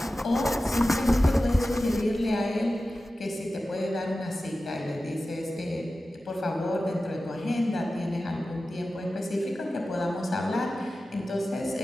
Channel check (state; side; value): normal; both; correlation 0.94